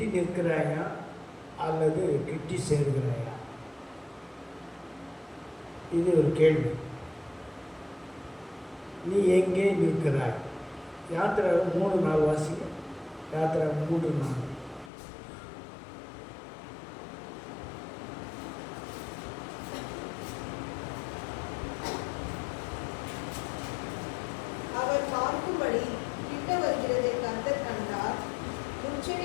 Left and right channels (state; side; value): drops out; right; at 14.9 s